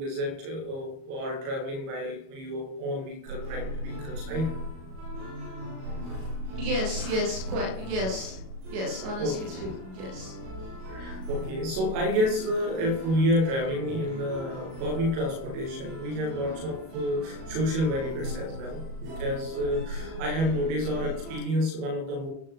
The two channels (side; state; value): left; late; 37 ms